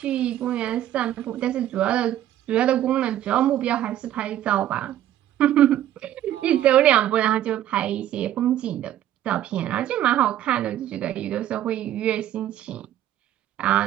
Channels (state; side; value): quieter; left; 12.2 dB